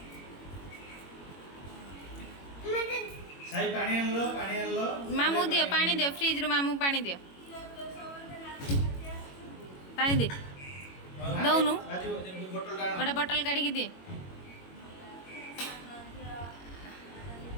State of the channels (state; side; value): late; right; 21 ms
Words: साई पानी आन लो मामू दियो पानी दियो फ्रिज रो मामू पानी दियो पानी दे दौनु गोटे बोतल काढ़ी के दे